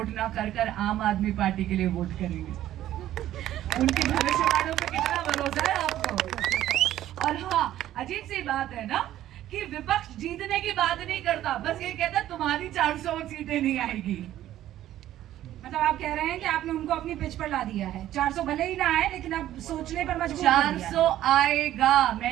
ना कर आम आदमी पार्टी के लिए वोट करेंगे। उनकी भविष्यवाणियों पे कितना भरोसा है आपको। और हाँ, अजीब सी बात है ना कि विपक्ष जीतने की बात नहीं करता, बस ये कहता तुम्हारी 400 सीटें नहीं आएगी। मतलब आप कह रहे हैं कि आपने उनको अपनी पिच पर ला दिया है। 400 भले ही ना आए, लेकिन अब सोचने पर मजबूर कर दिया। 400 आएगा,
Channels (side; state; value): left; quieter; 13.0 dB